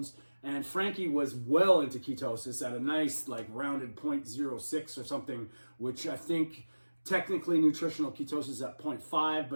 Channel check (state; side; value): inverted; both; correlation -1.00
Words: and Frankie was well into ketosis at a nice rounded 0.06 or something, which I think technically nutritional ketosis is at 0.5,